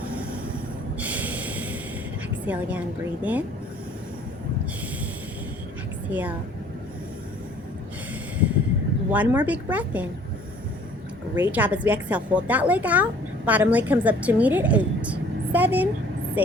Exhale again. Breathe in. Exhale. 1 more big breath in. Great job. As we exhale, hold that leg out. Bottom leg comes up to meet it. 8, 7,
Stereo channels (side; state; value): both; normal; correlation 0.55